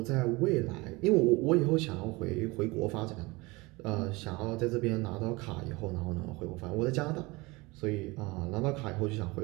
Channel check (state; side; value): quieter; left; 23.4 dB